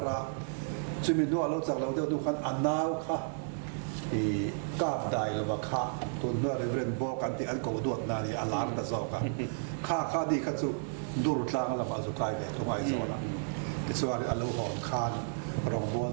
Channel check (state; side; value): silent; left; digital silence